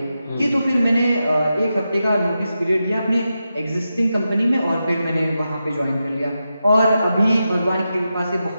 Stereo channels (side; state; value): both; inverted; correlation -0.89